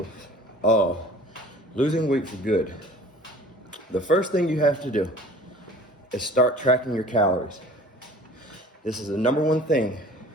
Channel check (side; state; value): both; normal; correlation 0.46